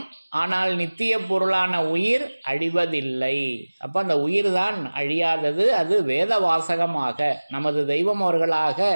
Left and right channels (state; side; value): inverted; both; correlation -1.00